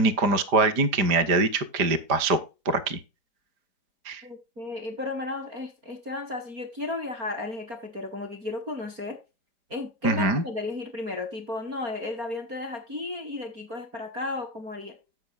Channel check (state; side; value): late; left; 4.9 ms